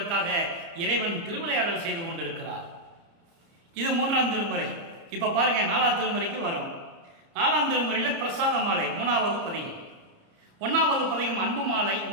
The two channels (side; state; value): left; late; 30 ms